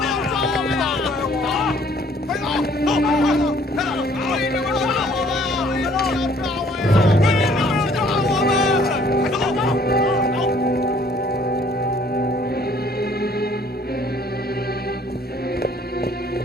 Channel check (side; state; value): both; normal; correlation 0.59